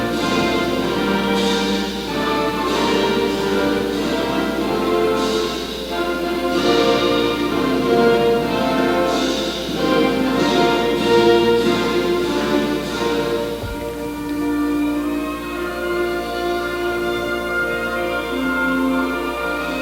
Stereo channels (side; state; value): both; identical; correlation 1.00